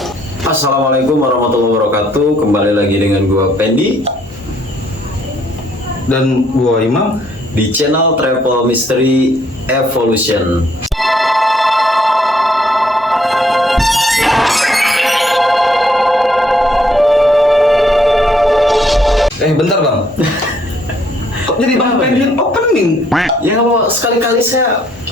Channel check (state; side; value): normal; both; correlation 0.67